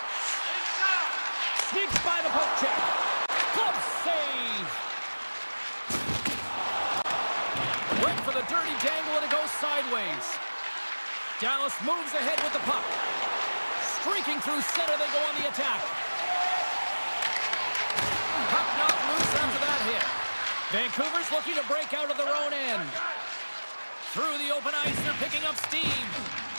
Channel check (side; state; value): both; inverted; correlation -1.00